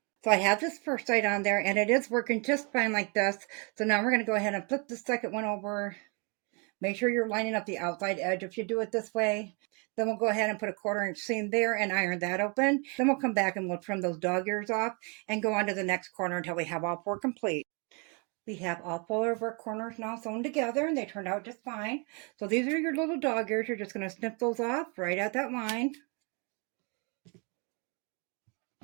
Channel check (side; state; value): left; quieter; 33.7 dB